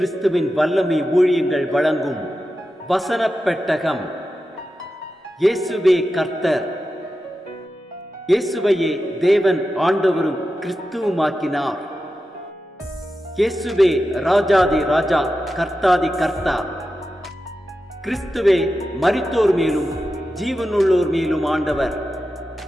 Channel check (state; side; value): normal; both; correlation 0.91